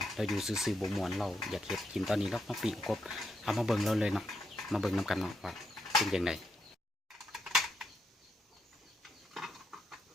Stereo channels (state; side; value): normal; both; correlation 0.81